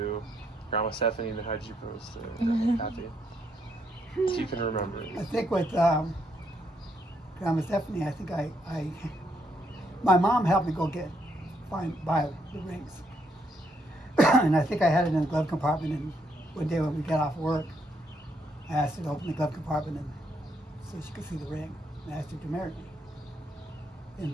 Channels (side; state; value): both; normal; correlation 0.74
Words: Grandma Stephanie, and how did you propose to Grandma Kathy? If you can remember. I think with Grandma Stephanie, I think my mom helped me go buy the rings. And I think I had it in the glove compartment, and one day when we got off work, I asked her to open the glove compartment and so she could see the ring. And I asked her to marry me.